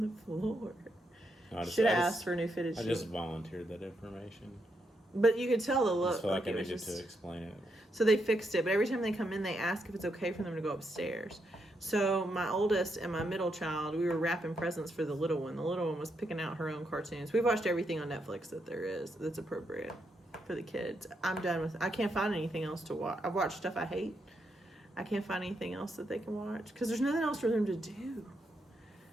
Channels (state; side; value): normal; both; correlation 0.80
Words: the floor? Should have asked for new fitted sheets. I just volunteered that information. But you could tell the I look. just feel like I it was needed to explain it. So they fixed it, but every time they come in, they ask if it's okay for them to go upstairs. So my oldest and my middle child, we were wrapping presents for the little one. The little one was picking out her own cartoons. We've watched everything on Netflix that there is that's appropriate for the kids. I'm done with it. I can't find anything else to watch. I've watched stuff I hate. I can't find anything else that they can watch because there's nothing else for them to do.